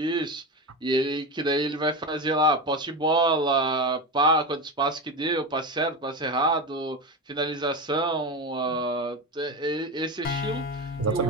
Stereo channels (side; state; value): both; normal; correlation 0.20